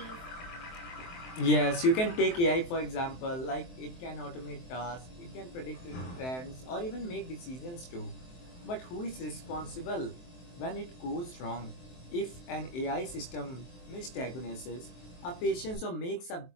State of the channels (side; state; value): right; late; 23 ms